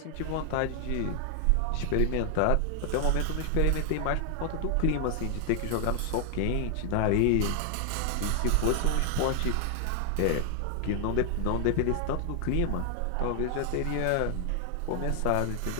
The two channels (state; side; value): different; both; correlation 0.00